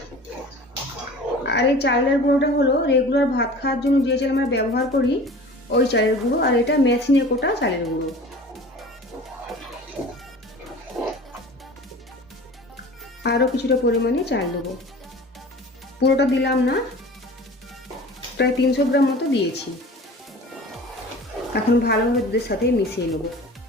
আর এই চালের গুঁড়োটা হলো রেগুলার ভাত খাওয়ার জন্য যে চাল আমরা ব্যবহার করি ওই চালের গুঁড়ো, আর এটা মেশিনে কোটা চালের গুঁড়ো। আরও কিছুটা পরিমাণে চাল দেবো। পুরোটা দিলাম না, প্রায় 300 গ্রাম মতো দিয়েছি। এখন ভালোভাবে দুধের সাথে মিশিয়ে নেব।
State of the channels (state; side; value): normal; both; correlation 0.41